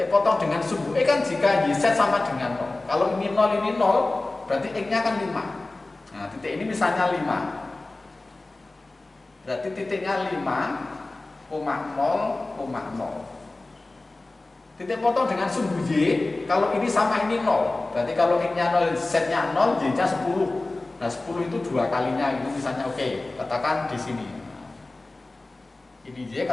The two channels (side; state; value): right; quieter; 3.1 dB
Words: potong dengan sumbu X kan jika YZ sama dengan 0. Kalau ini 0, ini 0, berarti X-nya kan 5. Nah, titik ini misalnya 5. Berarti titiknya 5,0,0. Titik potong dengan sumbu Y, kalau ini sama ini 0. Berarti kalau X-nya 0, Z-nya 0, Y-nya 10. Nah, 10 itu 2 kalinya, itu misalnya oke, katakan di sini. Ini Y,